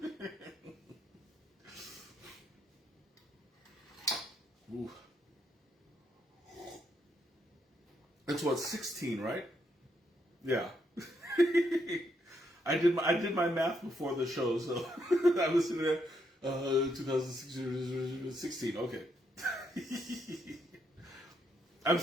Ooh. That's what, 16, right? Yeah. I did my math before the show, so I was sitting there. 2016. Okay. I'm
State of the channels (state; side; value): normal; both; correlation 0.77